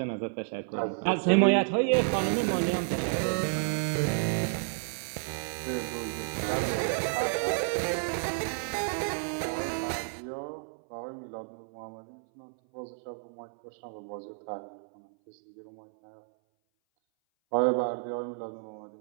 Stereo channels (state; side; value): silent; left; 57 dB below the other